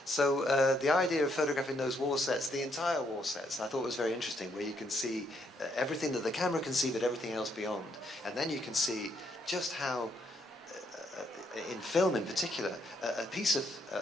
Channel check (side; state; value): both; normal; correlation 0.73